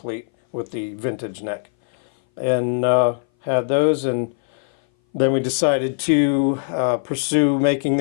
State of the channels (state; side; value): silent; right; 60 dB below the other